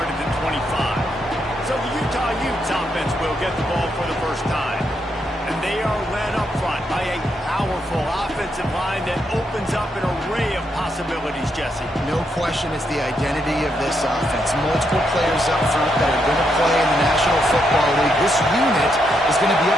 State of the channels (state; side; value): normal; both; correlation 0.79